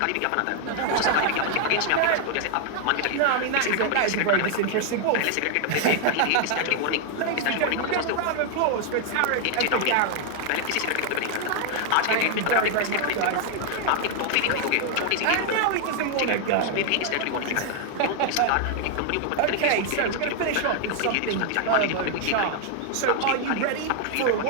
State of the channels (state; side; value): different; both; correlation 0.00